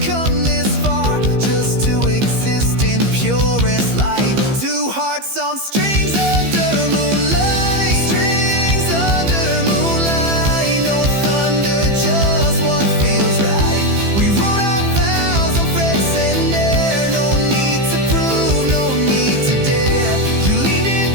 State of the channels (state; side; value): late; left; 15 ms